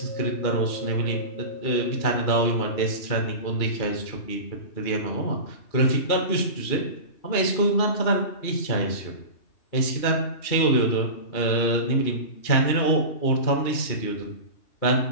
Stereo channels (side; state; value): right; late; 2.4 ms